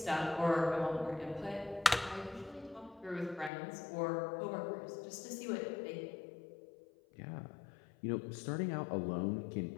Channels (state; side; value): drops out; right; at 3.5 s